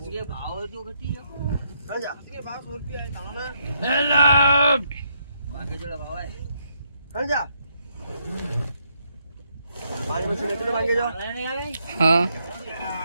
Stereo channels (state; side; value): inverted; both; correlation -0.76